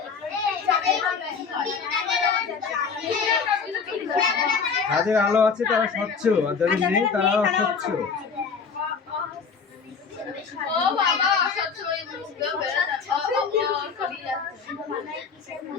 যাদের আলো আছে তারা স্বচ্ছ, আর যাদের নেই তারা অস্বচ্ছ। ও বাবা অস্বচ্ছ হয়ে বুঝতে বেড়ে যাচ্ছে।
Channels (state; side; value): quieter; right; 5.7 dB